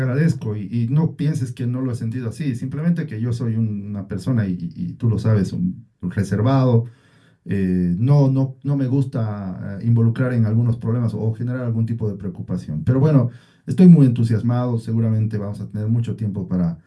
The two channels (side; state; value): both; identical; correlation 1.00